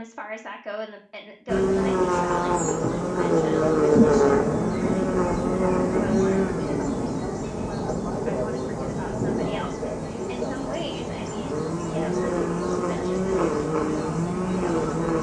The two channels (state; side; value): identical; both; correlation 1.00